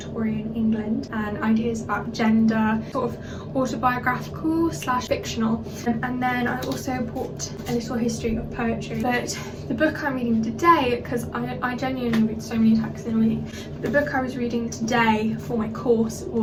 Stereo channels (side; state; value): both; identical; correlation 1.00